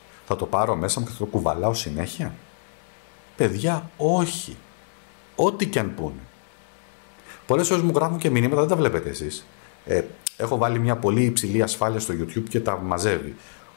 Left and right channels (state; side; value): silent; right; digital silence